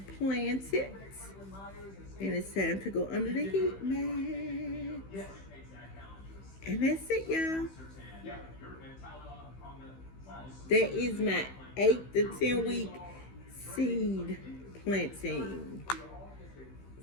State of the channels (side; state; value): right; late; 15 ms